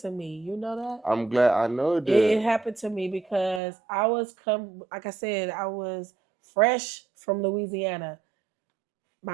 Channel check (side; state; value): left; drops out; at 3.6 s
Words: to me. You know that? I'm glad I know it It did. happened to me because like I said, I was fresh from Louisiana.